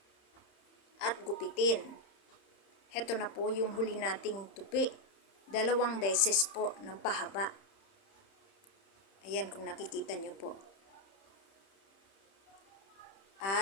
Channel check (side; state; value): right; late; 31 ms